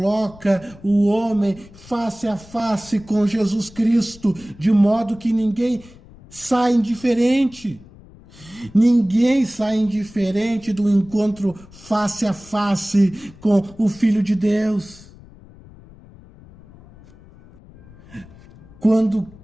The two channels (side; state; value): left; noise; rumble, 22 dB below the sound